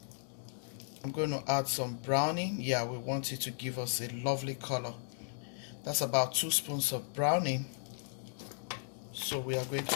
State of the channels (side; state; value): right; silent; digital silence